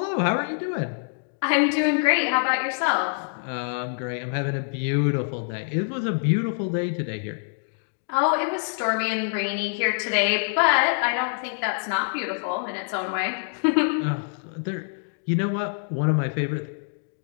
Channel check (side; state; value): right; silent; digital silence